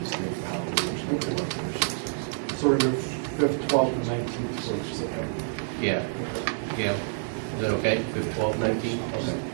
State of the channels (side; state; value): left; silent; 60 dB below the other